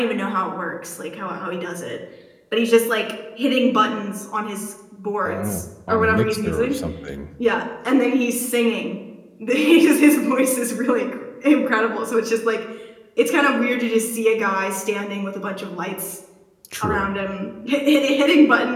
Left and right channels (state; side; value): identical; both; correlation 1.00